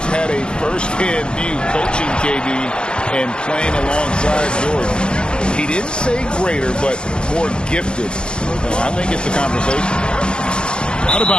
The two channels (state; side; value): late; right; 0.052 ms